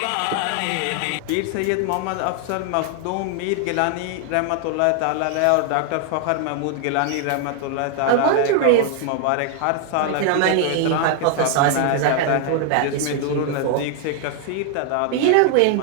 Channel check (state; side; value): different; both; correlation 0.00